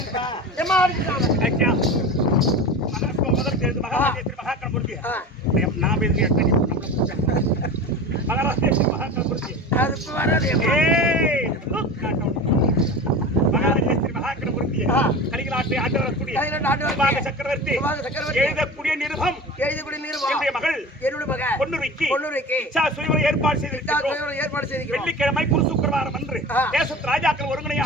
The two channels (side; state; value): both; normal; correlation 0.32